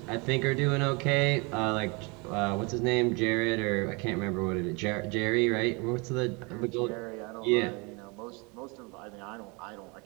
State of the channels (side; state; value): left; quieter; 29.5 dB